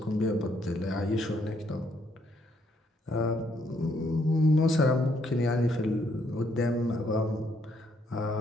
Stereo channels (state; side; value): normal; both; correlation 0.71